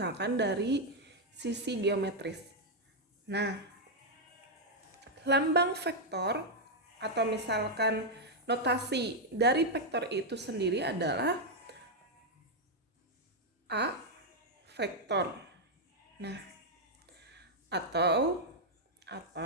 dari sisi geometris. Nah, lambang vektor atau misalkan notasi dari vektor itu sendiri adalah A vektor. Nah, atau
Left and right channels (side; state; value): both; normal; correlation -0.01